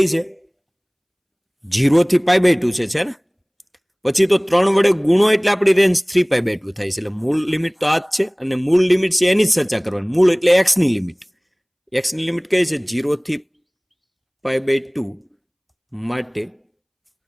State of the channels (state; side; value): identical; both; correlation 1.00